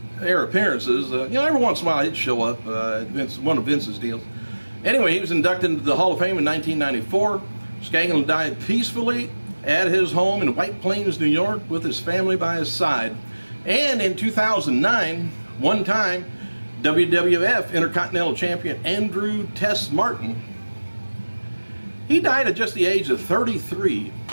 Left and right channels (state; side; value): inverted; both; correlation -1.00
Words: appearances. Every once in a while he'd show up at one of Vince's deals. Anyway, he was inducted into the Hall of Fame in 1994. Skaglan died peacefully at his home in White Plains, New York, with his family by his side. And in 2009, one time, WWF Intercontinental Champion Andrew Tess Martin, he died at just the age of 33.